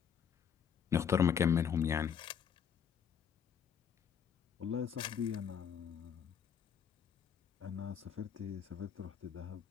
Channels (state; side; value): quieter; right; 7.7 dB